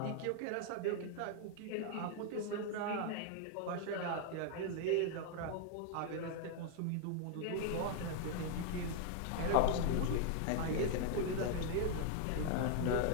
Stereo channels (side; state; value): both; different; correlation 0.00